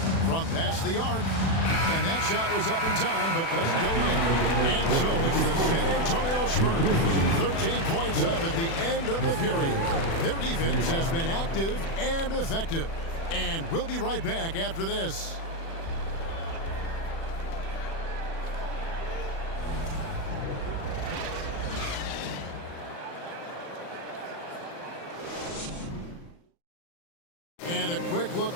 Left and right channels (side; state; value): right; late; 36 ms